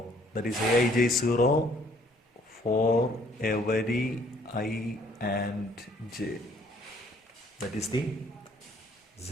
That is, Aij is 0 for every I and j. That is the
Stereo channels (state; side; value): normal; both; correlation 0.62